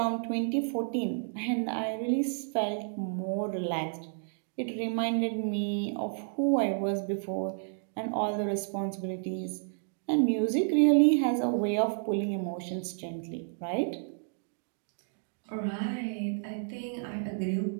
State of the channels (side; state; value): left; silent; digital silence